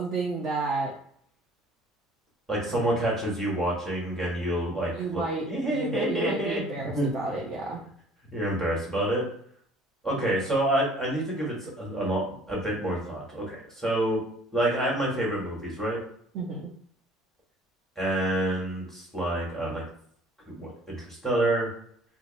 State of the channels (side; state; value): both; normal; correlation 0.54